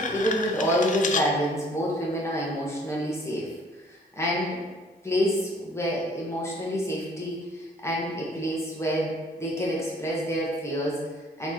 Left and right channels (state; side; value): normal; both; correlation 0.57